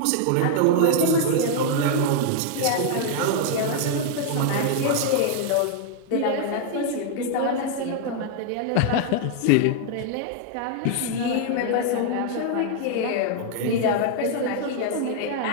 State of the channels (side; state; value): both; different; correlation 0.00